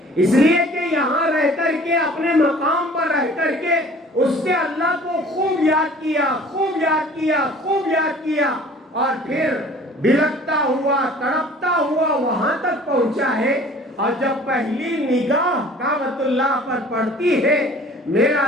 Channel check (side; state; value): both; normal; correlation 0.49